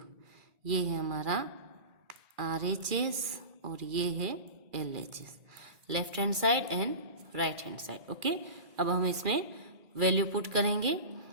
ये है हमारा RHS और ये है LHS, left hand side and right hand side. Okay, अब हम इसमें वैल्यू पुट करेंगे।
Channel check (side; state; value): left; late; 2.4 ms